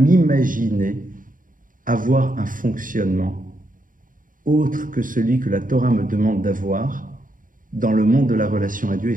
avoir un fonctionnement autre que celui que la Torah me demande d'avoir dans le monde de la relation à Dieu et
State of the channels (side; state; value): left; late; 0.39 ms